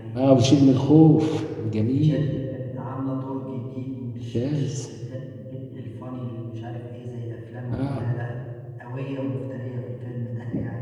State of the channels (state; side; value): identical; both; correlation 1.00